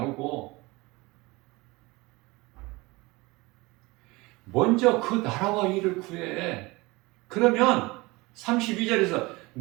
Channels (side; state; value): left; quieter; 23.1 dB